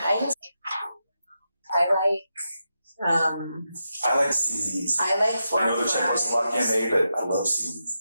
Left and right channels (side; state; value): both; inverted; correlation -0.87